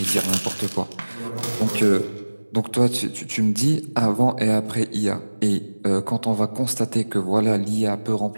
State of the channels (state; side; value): inverted; both; correlation -1.00